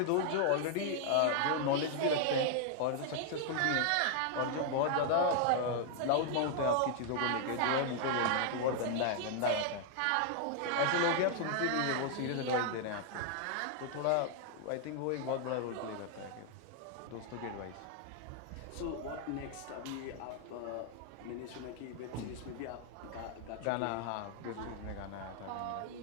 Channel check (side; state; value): both; different; correlation 0.00